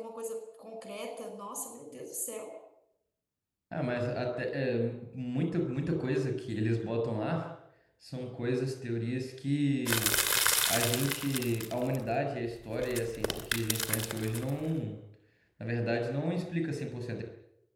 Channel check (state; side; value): identical; both; correlation 1.00